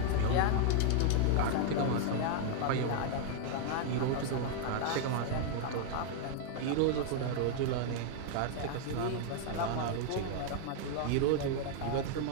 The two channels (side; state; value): both; different; correlation 0.00